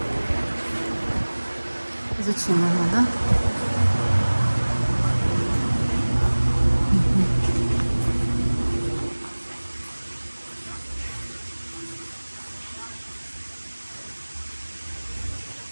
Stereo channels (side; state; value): both; inverted; correlation -1.00